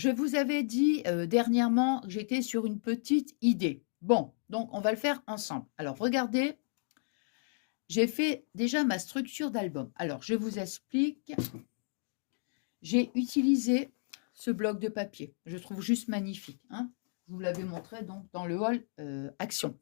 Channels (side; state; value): right; silent; digital silence